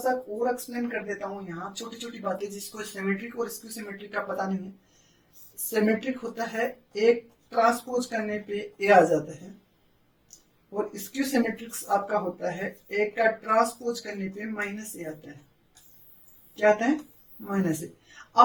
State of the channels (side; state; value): both; identical; correlation 1.00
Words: और एक्सप्लेन कर देता हूँ यहाँ, छोटी छोटी बातें जिसको सिमेट्रिक और स्क्यू सिमेट्रिक का पता नहीं है। सिमेट्रिक होता है एक ट्रांसपोज करने पे ए आ जाता है, और स्क्यू सिमेट्रिक्स आपका होता है एक का ट्रांसपोज करने पे माइनस ए आता है। क्या आता है, माइनस ए।